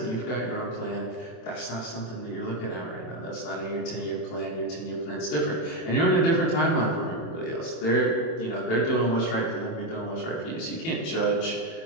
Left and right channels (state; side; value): late; right; 27 ms